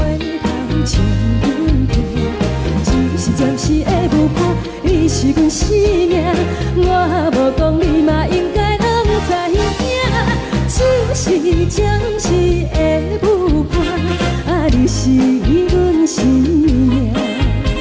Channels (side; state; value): both; identical; correlation 1.00